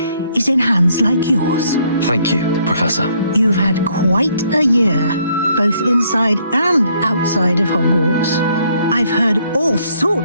is in hands like yours. Thank you, Professor. You've had quite a year, both inside and outside of Hogwarts. I've heard all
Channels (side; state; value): both; inverted; correlation -0.67